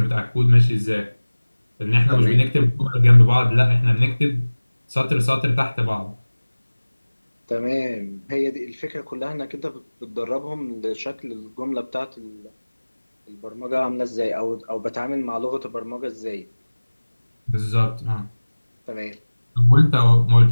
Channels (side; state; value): both; inverted; correlation -1.00